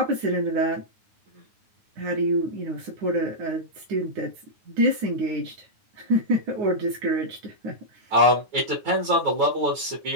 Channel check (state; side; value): late; left; 9.4 ms